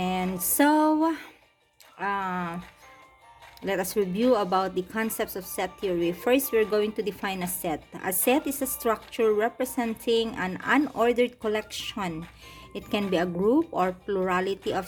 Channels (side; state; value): both; identical; correlation 1.00